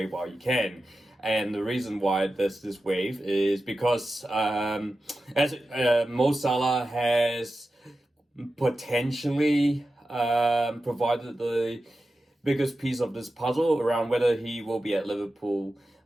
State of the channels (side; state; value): both; normal; correlation 0.92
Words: while you can. And the reason why there's this wave is because Mo Salah has potentially provided the biggest piece of this puzzle around whether he will be at Liverpool